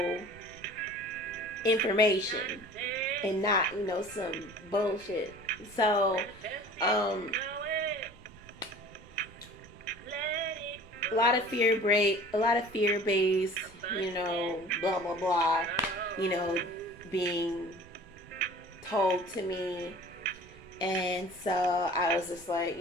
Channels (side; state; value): both; normal; correlation 0.45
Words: information and not, some bullshit. So, a lot of fear-based, blah, blah, blah, being told to me. And so I was just like,